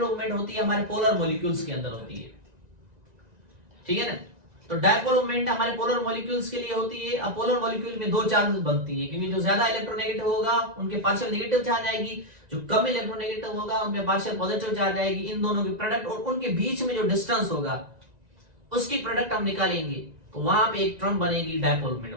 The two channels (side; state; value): left; late; 1.9 ms